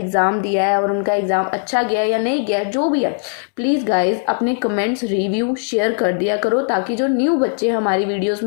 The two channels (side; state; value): right; silent; digital silence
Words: दिया है और उनका एग्ज़ाम अच्छा गया या नहीं गया, जो भी है, प्लीज़ गाइज अपने कमेंट्स रिव्यू शेयर कर दिया करो, ताकि जो न्यू बच्चे हमारी वीडियोज़